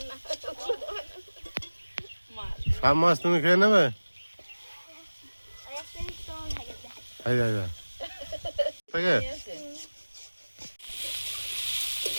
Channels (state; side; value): inverted; both; correlation -1.00